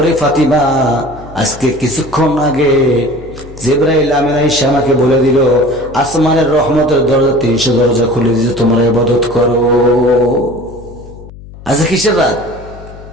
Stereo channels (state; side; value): noise; left; hum, 17 dB below the sound